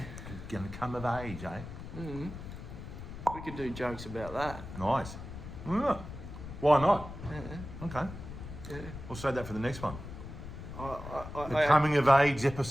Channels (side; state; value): left; noise; rumble, 11 dB below the sound